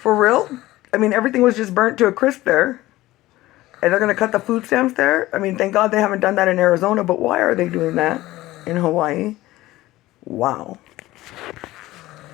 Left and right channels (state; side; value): quieter; right; 17.2 dB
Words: real? I mean, everything was just burnt to a crisp there. And they're going to cut the food stamps there? I mean, thank God they haven't done that in Arizona, but why are they doing that in Hawaii? Wow.